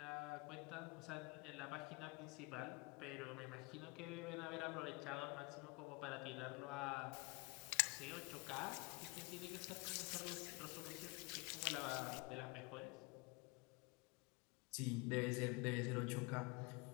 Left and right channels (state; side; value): quieter; right; 27.3 dB